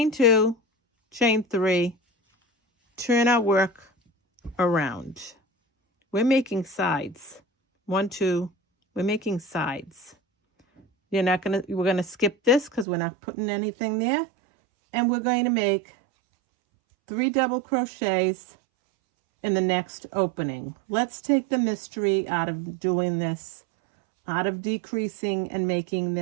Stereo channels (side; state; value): left; drops out; at 12.9 s